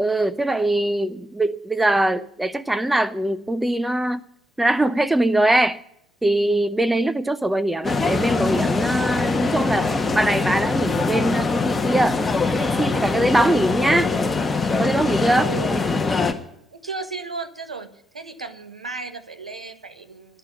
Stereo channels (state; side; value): normal; both; correlation 0.86